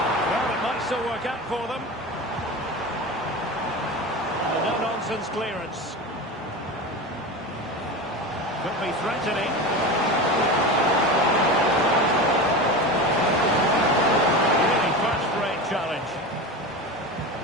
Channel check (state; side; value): normal; both; correlation 0.27